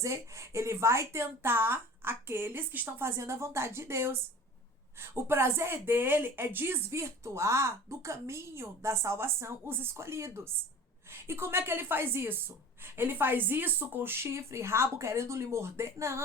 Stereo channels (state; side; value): normal; both; correlation 0.40